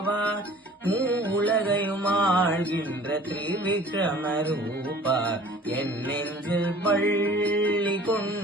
உலகையும் ஆழ்கின்ற திரிவிக்ரம ரூபா என் நெஞ்சில் பள்ளி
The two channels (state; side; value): normal; both; correlation 0.48